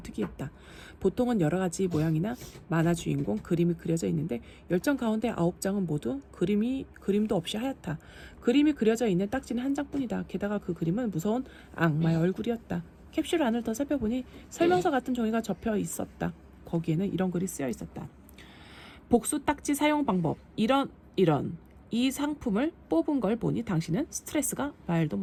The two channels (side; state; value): both; identical; correlation 1.00